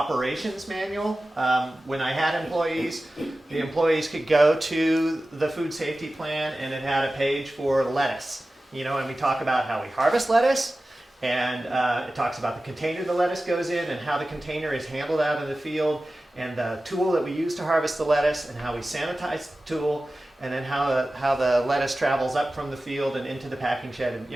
manual. When I had employees, the employees could go to the food safety plan, and it had a page for lettuce. You know, and we talk about how we harvest lettuce, and it talks about the container the lettuce goes in, and how the container is handled out in the field, and the tool that we use to harvest the lettuce, and how we sanitize the tool, and then how the lettuce travels up from the field and into the packing shed, and,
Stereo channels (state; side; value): normal; both; correlation 0.96